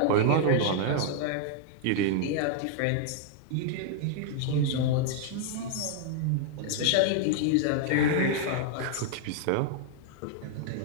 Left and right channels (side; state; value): both; different; correlation 0.00